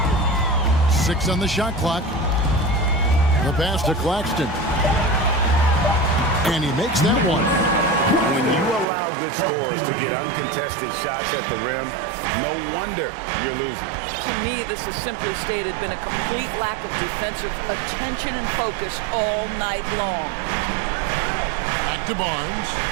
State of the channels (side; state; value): left; drops out; at 8.8 s